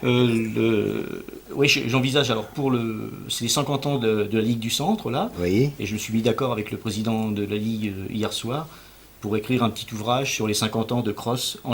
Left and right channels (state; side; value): identical; both; correlation 1.00